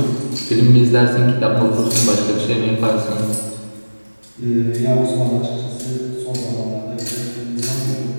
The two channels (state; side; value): inverted; both; correlation -1.00